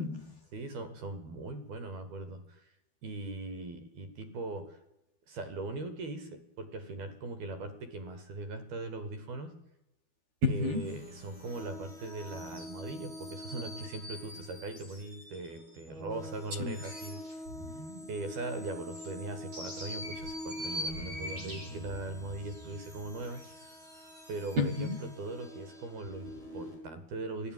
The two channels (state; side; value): late; left; 12 ms